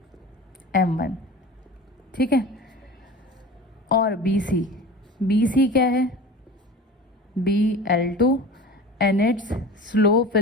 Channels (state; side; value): normal; both; correlation 0.36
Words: M1। ठीक है, और BC क्या है BL2 and its slope